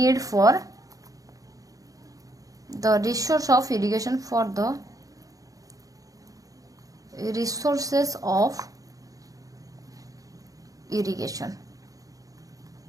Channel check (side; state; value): left; late; 0.17 ms